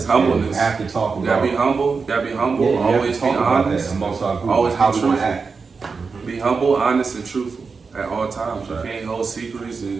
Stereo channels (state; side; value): quieter; left; 4.9 dB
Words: humbleness. You have to talk about. You gotta be humble. Yeah, Always be honest. Amongst our group. Always how be we want to truthful. act. Be humble, honest, and truthful at all times. Right. You can't hold secrets,